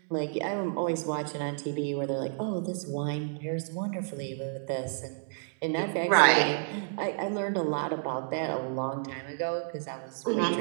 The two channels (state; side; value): silent; left; digital silence